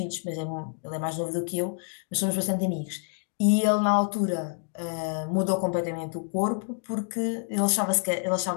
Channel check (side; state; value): right; silent; 60 dB below the other